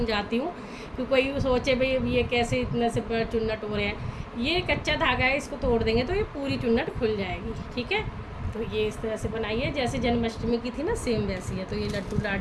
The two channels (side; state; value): both; identical; correlation 1.00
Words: हूँ कि कोई सोचे भाई ये कैसे इतने से चुन्नट हो रहे हैं। ये कच्चा धागा है, इसको तोड़ देंगे तो ये पूरी चुन्नट खुल जाएगी। ठीक है, तो ये इस तरह से बनाई है जैसे जन्माष्टमी की थी ना, सेम वैसी है। तो ये लड्डू